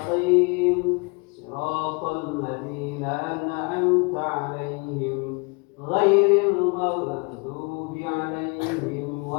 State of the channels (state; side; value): quieter; right; 31.0 dB